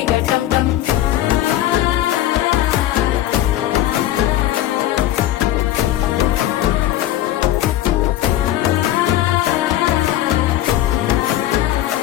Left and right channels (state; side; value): quieter; right; 13.5 dB